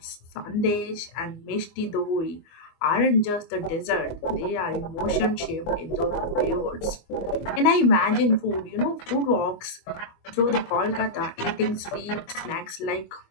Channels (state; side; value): late; right; 24 ms